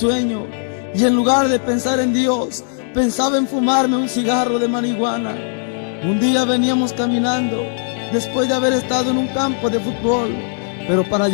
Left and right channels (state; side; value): silent; right; digital silence